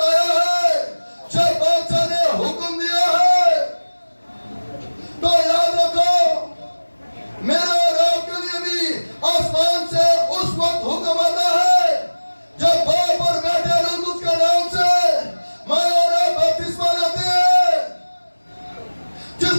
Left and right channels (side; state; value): both; inverted; correlation -1.00